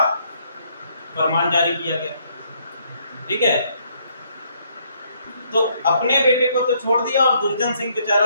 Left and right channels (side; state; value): both; inverted; correlation -0.69